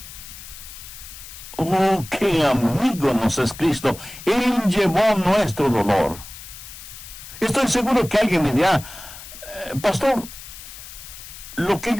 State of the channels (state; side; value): noise; left; hiss, 14 dB below the sound